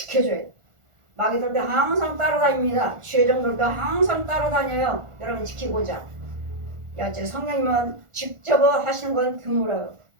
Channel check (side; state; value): left; late; 1.4 ms